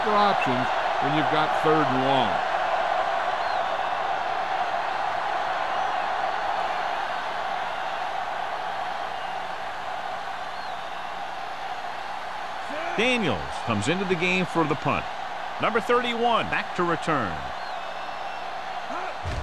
options when you've got third and long. Daniels comes into the game for the punt. Number 31 back to return.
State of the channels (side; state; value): both; identical; correlation 1.00